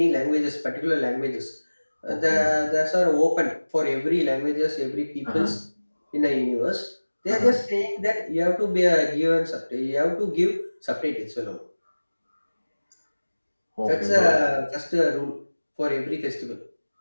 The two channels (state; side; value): inverted; both; correlation -1.00